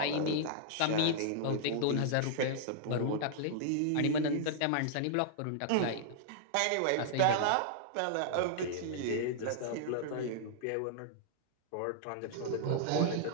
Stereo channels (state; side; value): different; both; correlation -0.01